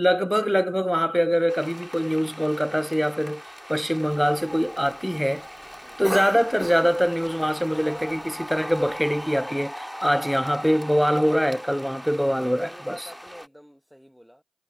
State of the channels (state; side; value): identical; both; correlation 1.00